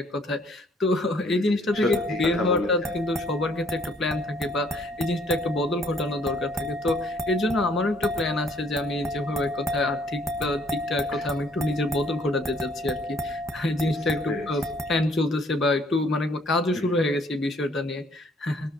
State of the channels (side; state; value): both; normal; correlation 0.63